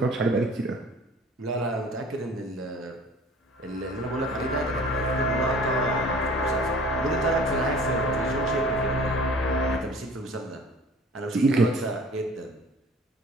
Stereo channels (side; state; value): both; normal; correlation 0.47